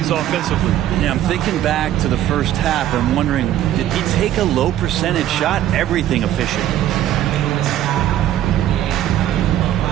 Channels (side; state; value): left; quieter; 12.2 dB